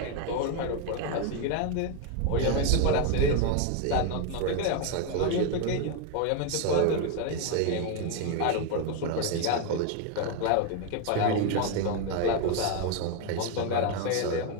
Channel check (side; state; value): both; different; correlation 0.01